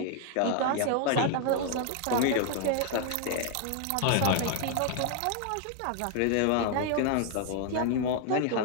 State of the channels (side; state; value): both; different; correlation 0.00